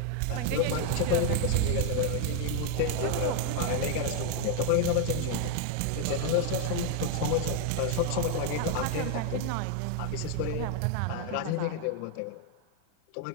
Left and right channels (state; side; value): different; both; correlation 0.00